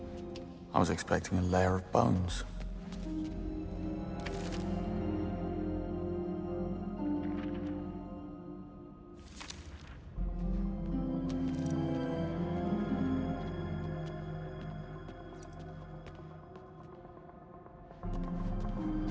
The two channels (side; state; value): both; identical; correlation 1.00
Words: I was expecting a layer of bones.